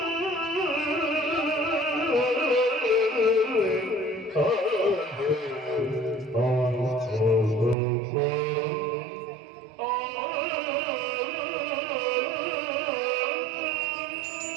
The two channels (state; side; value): drops out; left; at 7.8 s